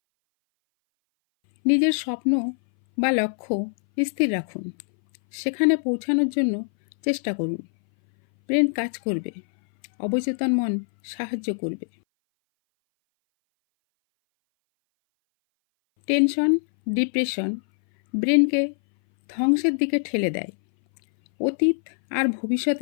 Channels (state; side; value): silent; right; 60 dB below the other